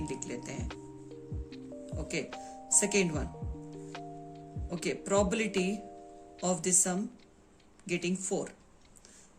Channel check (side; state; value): both; identical; correlation 1.00